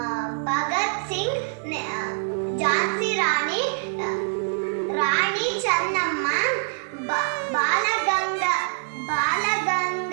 ಭಗತ್ ಸಿಂಗ್, ಝಾನ್ಸಿ ರಾಣಿ ಚೆನ್ನಮ್ಮ,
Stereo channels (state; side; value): silent; left; 62 dB below the other